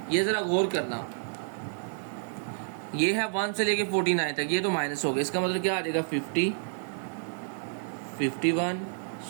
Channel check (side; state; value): left; silent; digital silence